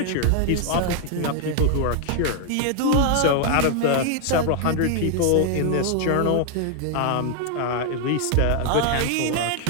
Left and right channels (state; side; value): different; both; correlation 0.00